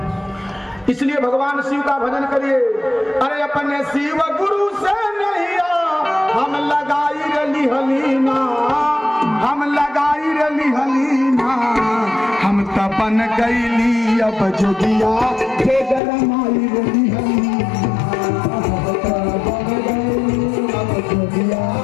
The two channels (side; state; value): right; drops out; at 16.0 s